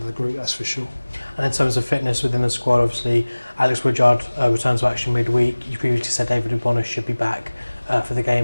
the group, that's for sure. And in terms of fitness within the squad, obviously Alex Woodyard returns to action midweek. You previously said David Ubona should be back for the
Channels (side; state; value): both; inverted; correlation -1.00